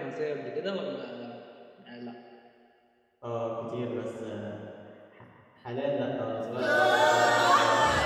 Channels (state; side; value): identical; both; correlation 1.00